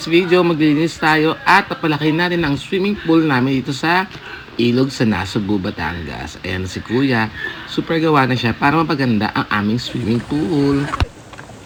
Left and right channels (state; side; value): identical; both; correlation 1.00